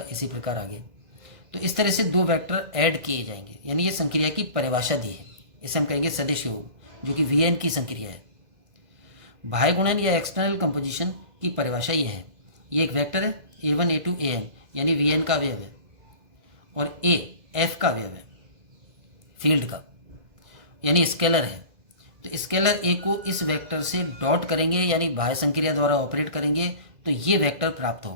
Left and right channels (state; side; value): late; left; 2.0 ms